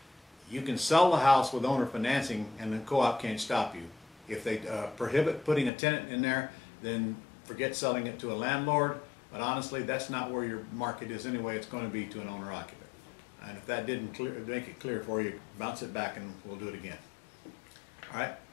You can sell the house with owner financing, and the co-op can't stop you. If they prohibit putting a tenant in there, then forget selling it to a landlord. But honestly, that's not where your market is anyway. It's going to be to an owner occupant. And if that didn't make it clear for you, bounce it back and we'll do it again. All right?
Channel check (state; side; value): drops out; right; at 5.7 s